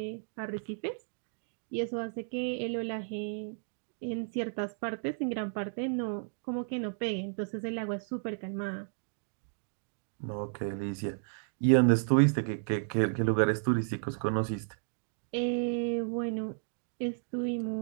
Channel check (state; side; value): silent; left; digital silence